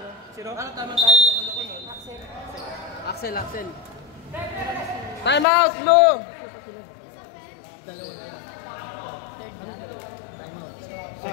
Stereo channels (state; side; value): drops out; right; at 5.5 s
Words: Zero. Parang tama tayo loko-loko nun. Axel. Time out, Blue.